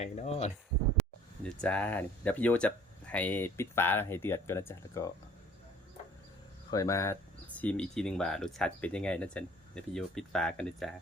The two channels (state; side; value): normal; both; correlation 0.53